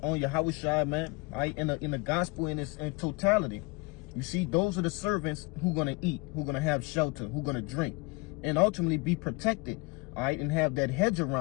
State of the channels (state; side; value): quieter; right; 27.2 dB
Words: on Yahweh, man, all right, in the gospel in its totality. You see, those are the servants who going to eat, who going to have shelter, who going to drink, and ultimately be protected, all right, and have that hedge